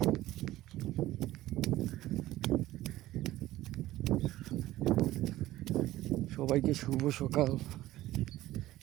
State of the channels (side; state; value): left; quieter; 15.7 dB